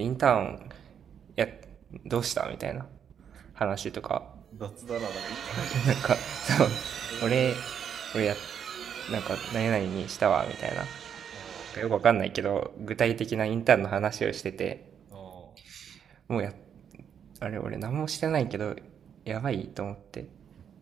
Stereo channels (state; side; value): quieter; left; 8.2 dB